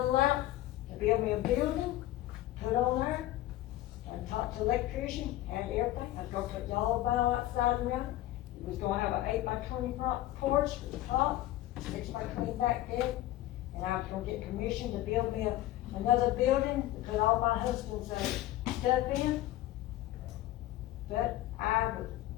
to build me a building, put on there, and talk to the electrician, and everything. I was gonna put yellow vinyl outside around it. It was gonna have an 8x20 porch with the top, 6x20 back deck, and I was gonna get permission to build me another building to put all my husband's stuff in. But I was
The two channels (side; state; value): right; quieter; 15.3 dB